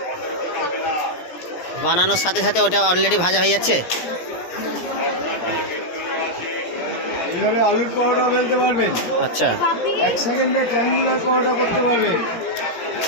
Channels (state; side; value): late; right; 17 ms